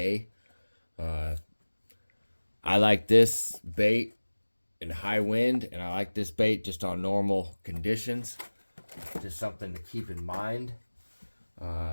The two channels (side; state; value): both; inverted; correlation -1.00